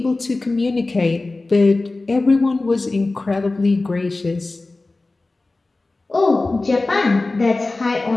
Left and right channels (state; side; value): quieter; right; 3.2 dB